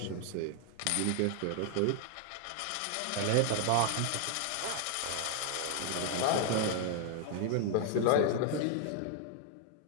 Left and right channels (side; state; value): both; different; correlation 0.00